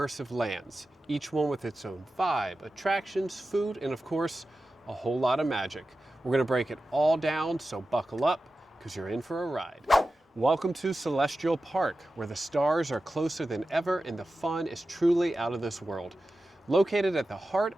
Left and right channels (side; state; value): both; normal; correlation 0.93